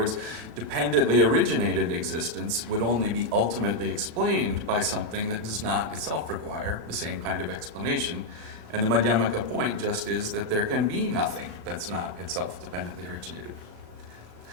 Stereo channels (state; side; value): late; left; 37 ms